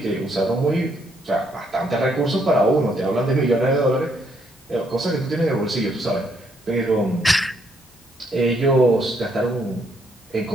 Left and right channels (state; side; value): normal; both; correlation 0.72